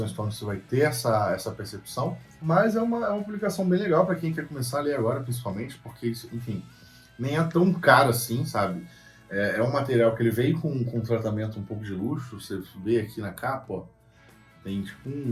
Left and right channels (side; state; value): both; identical; correlation 1.00